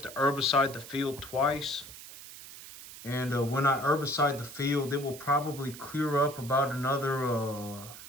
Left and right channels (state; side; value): noise; right; hiss, 14 dB below the sound